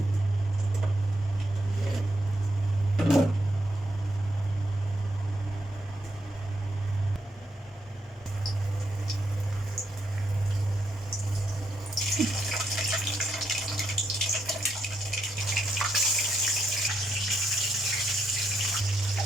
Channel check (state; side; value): normal; both; correlation 0.79